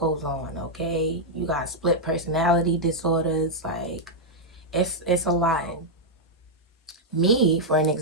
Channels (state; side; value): normal; both; correlation -0.04